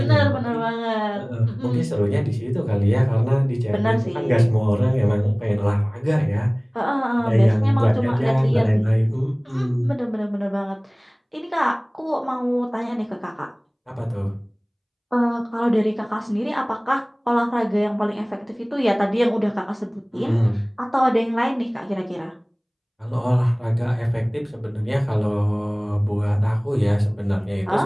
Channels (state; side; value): identical; both; correlation 1.00